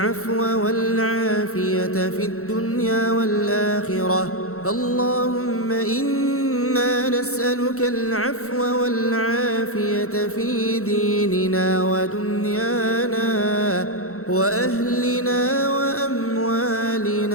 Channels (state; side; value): late; right; 0.64 ms